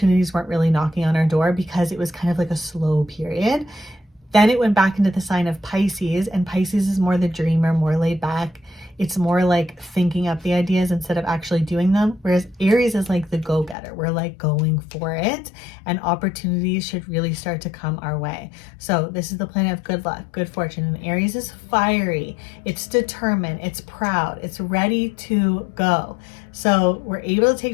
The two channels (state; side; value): drops out; right; at 13.8 s